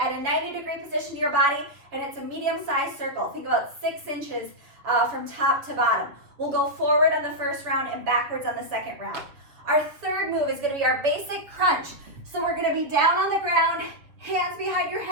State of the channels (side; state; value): left; late; 7.2 ms